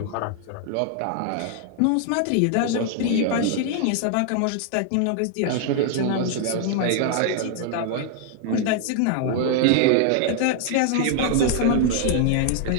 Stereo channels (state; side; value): different; both; correlation 0.00